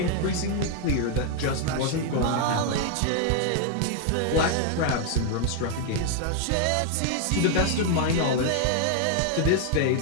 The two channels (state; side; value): different; both; correlation 0.00